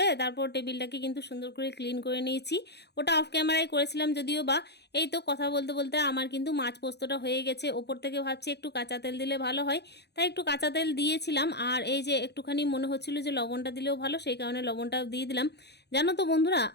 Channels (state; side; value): late; right; 0.49 ms